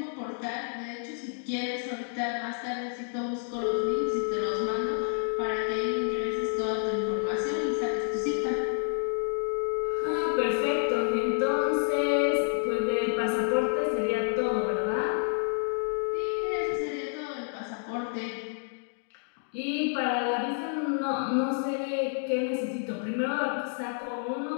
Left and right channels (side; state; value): right; silent; 58 dB below the other